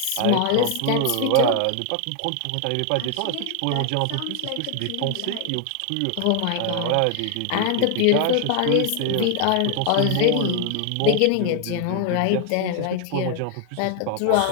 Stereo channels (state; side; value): different; both; correlation 0.00